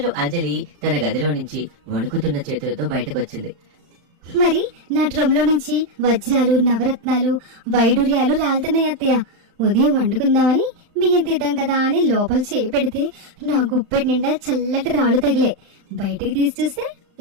అంజలి తన గదిలో నుంచి వణుకుతున్న చేతులతో బయటకొచ్చింది. మరి నా డ్రమ్లో నుంచి వజ్రాలు, నవరత్నాలు, వైడూర్యాలు రాలుతున్నాయి అత్తయ్య. ఉదయం వండుకుందామని బియ్యం తీద్దాం కదా అని లోపల చేయి పెడితే నా గుప్పెటి నిండా చల్లటి రాళ్ళు తగిలే. బయటికి తీసి చూస్తే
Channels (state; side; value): late; left; 35 ms